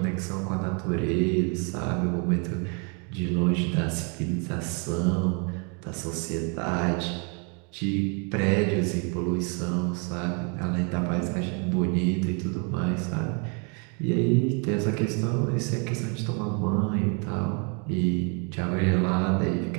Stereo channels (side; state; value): left; quieter; 36.2 dB